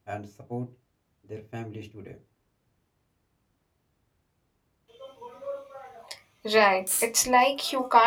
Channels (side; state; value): both; identical; correlation 1.00